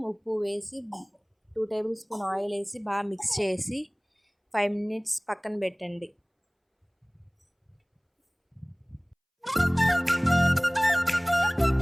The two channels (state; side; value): identical; both; correlation 1.00